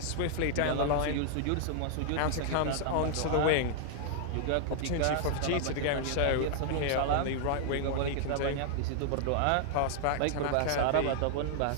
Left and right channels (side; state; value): both; different; correlation -0.01